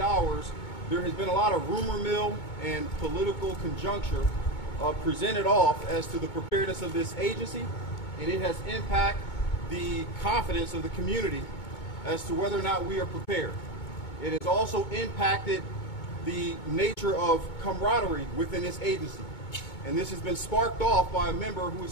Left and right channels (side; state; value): right; late; 2.2 ms